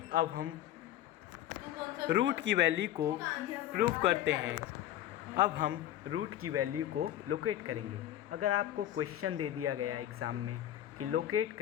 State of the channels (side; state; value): right; quieter; 12.5 dB